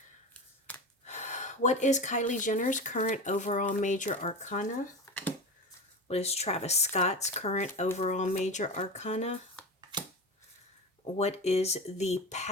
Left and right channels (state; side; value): normal; both; correlation 0.26